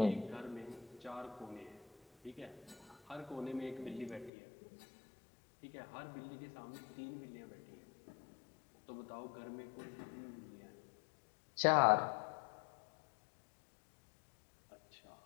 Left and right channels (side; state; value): right; drops out; at 4.3 s